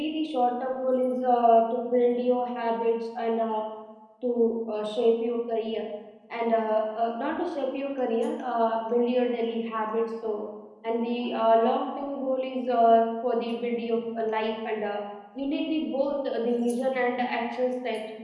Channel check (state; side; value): identical; both; correlation 1.00